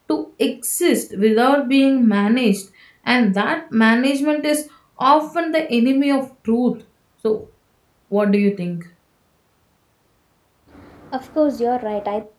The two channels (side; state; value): both; identical; correlation 1.00